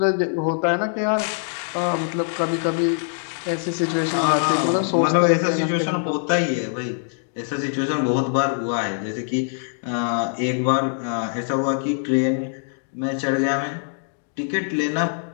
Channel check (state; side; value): silent; right; digital silence